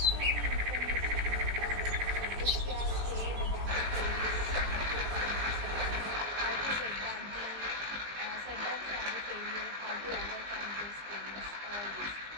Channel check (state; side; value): late; left; 20 ms